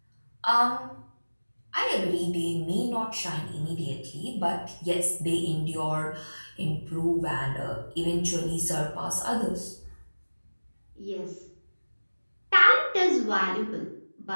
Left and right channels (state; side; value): inverted; both; correlation -1.00